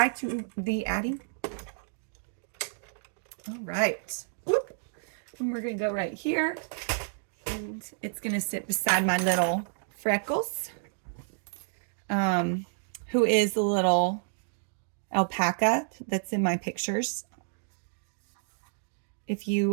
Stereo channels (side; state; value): left; silent; digital silence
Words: to the Addy. All right. Whoop. And we're gonna go right here. And it's gonna sit beside my little Freckles, who is the little alpaca that's in my pictures. If